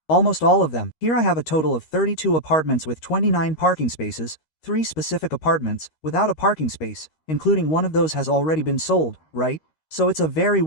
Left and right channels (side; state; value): right; late; 13 ms